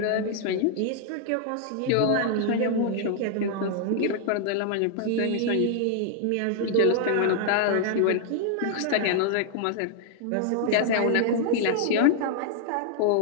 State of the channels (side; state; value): both; different; correlation -0.01